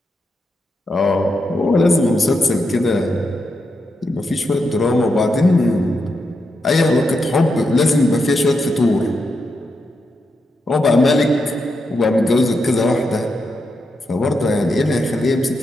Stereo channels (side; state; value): both; normal; correlation 0.84